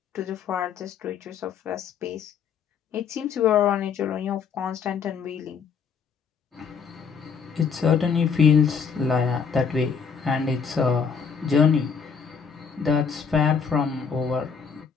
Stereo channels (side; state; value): right; quieter; 6.2 dB